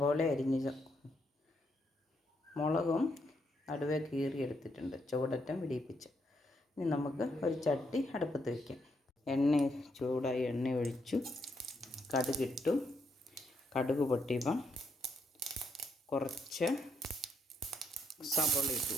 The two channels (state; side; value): normal; both; correlation 0.76